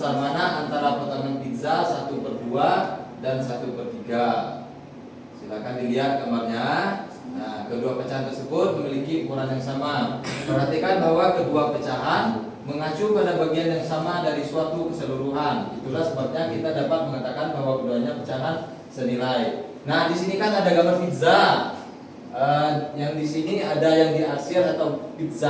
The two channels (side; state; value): both; identical; correlation 1.00